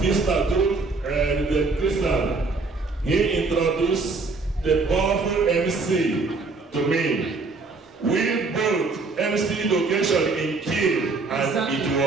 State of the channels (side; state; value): left; quieter; 3.9 dB